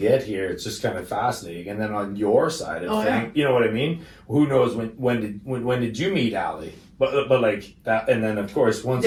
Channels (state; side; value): identical; both; correlation 1.00